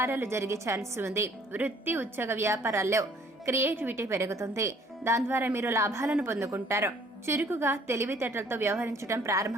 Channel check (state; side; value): normal; both; correlation 0.58